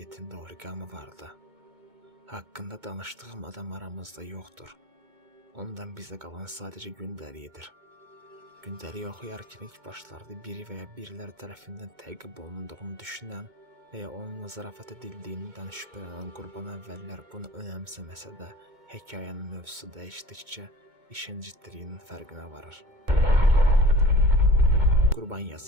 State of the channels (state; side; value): late; left; 2.2 ms